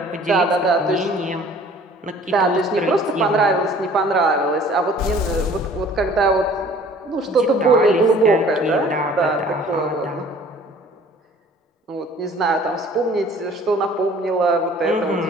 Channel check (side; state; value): both; normal; correlation 0.51